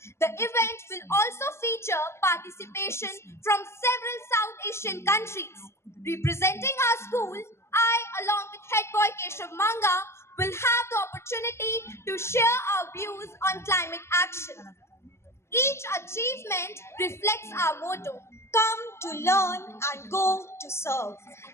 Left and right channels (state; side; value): late; right; 0.13 ms